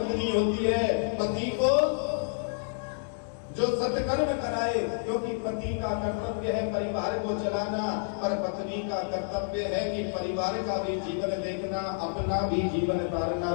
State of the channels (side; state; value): right; silent; digital silence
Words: होती है। पति को जो सत्कर्म कराए, क्योंकि पति का कर्तव्य है परिवार को चलाना, पर पत्नी का कर्तव्य है कि परिवार का भी जीवन देखना, अपना भी जीवन तारना